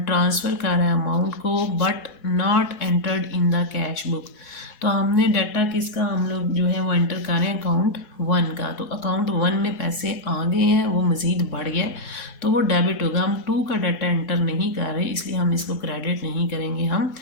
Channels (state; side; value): late; right; 4.7 ms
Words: ट्रांसफ़र कर रहा है अमाउंट को but not entered in the cash cash book. तो हमने डाटा किसका हम लोग जो है वो एंटर कर रहे हैं अकाउंट 1 का। तो अकाउंट 1 में पैसे आ गए हैं, वो मज़ीद बढ़ गया तो वो डेबिट होगा। हम 2 का डाटा एंटर नहीं कर रहे इसलिए हम इसको क्रेडिट नहीं करेंगे, हम